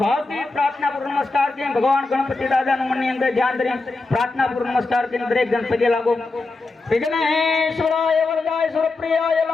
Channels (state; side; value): quieter; right; 3.4 dB